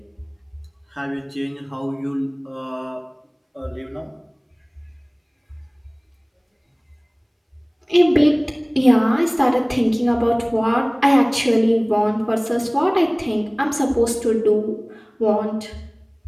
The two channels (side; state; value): both; identical; correlation 1.00